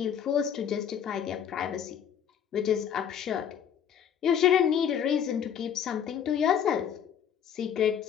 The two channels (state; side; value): quieter; right; 8.6 dB